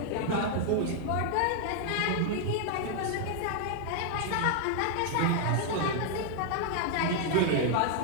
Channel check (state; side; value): different; both; correlation 0.00